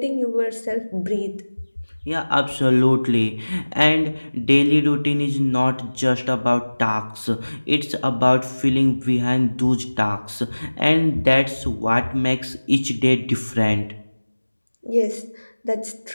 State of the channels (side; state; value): both; inverted; correlation -1.00